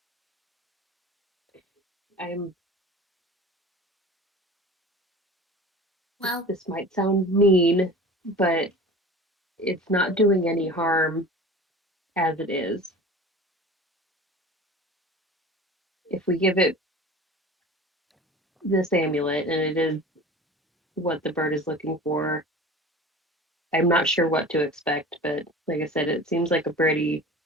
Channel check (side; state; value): both; normal; correlation 0.38